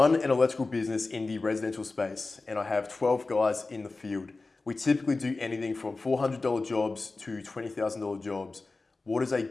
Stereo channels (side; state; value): right; quieter; 3.6 dB